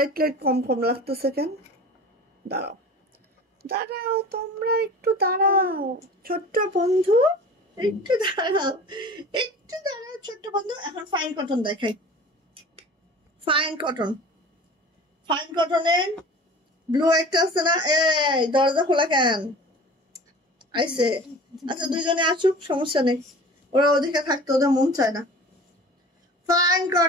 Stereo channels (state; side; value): normal; both; correlation 0.40